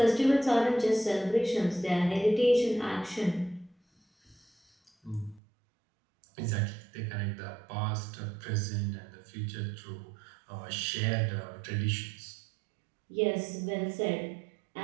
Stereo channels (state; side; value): drops out; left; at 5.4 s